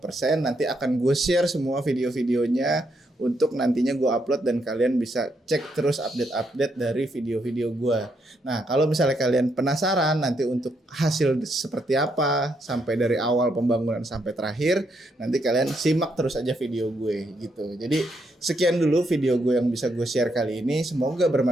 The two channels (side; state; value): both; normal; correlation 0.77